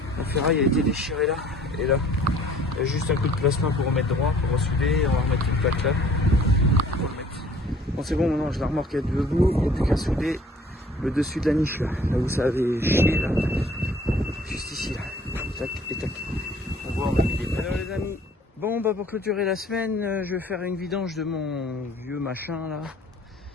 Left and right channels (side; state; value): both; normal; correlation 0.54